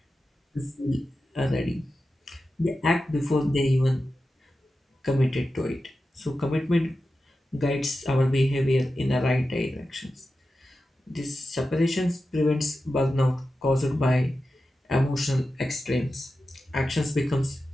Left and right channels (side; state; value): both; normal; correlation 0.92